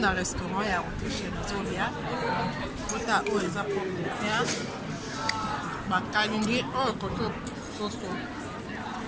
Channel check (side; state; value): both; identical; correlation 1.00